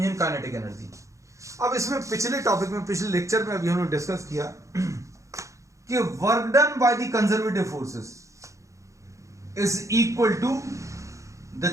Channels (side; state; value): left; late; 0.15 ms